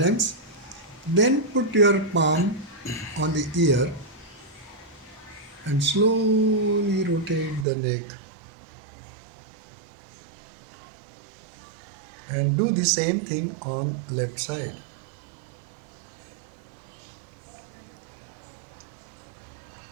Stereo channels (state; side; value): drops out; left; at 7.7 s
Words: Then put your palm on the ear and slowly rotate the neck. And do the same thing on left side.